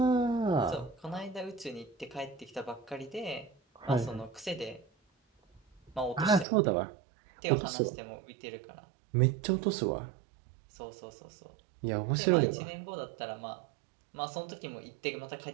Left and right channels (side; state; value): left; drops out; at 6.5 s